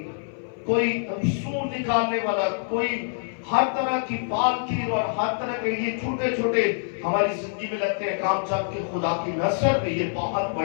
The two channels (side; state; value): right; silent; 58 dB below the other